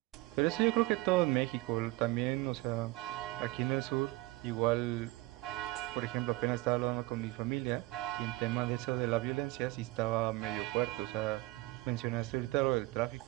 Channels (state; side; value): quieter; left; 20.5 dB